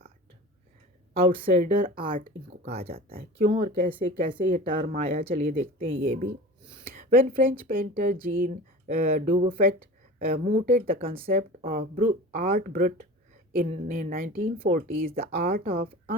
Outsider art इनको कहा जाता है। क्यों और कैसे कैसे ये टर्म आया, चलिए देखते हैं ये भी। When French painter Jean Dubuffet mooted the concept of art brut in 1940s, the art of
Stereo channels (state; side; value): normal; both; correlation 0.36